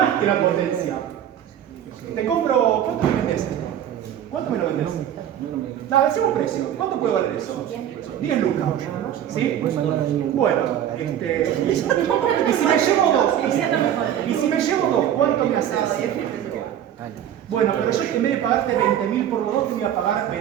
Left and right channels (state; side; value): quieter; left; 10.5 dB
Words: que la potencia. Te compro. ¿Cuánto me vendes esto? ¿Cuánto me lo vendes? No, decimos precio. ¿Cuánto puede valer eso? 10 lucas. ¿Sí? Bueno, y si me llevo dos, ¿cuánto me haces? Bueno, pero yo en vez de pagarte 20.000 por los dos, te voy a pagar